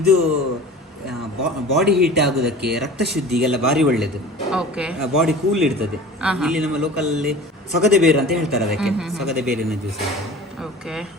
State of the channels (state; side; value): normal; both; correlation 0.39